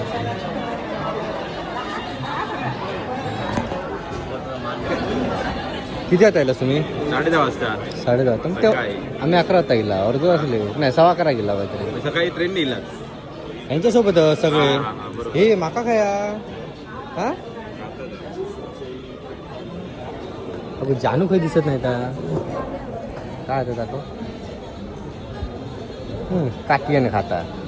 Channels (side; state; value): both; identical; correlation 1.00